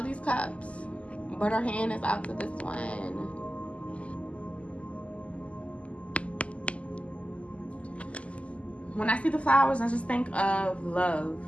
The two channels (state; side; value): late; right; 0.062 ms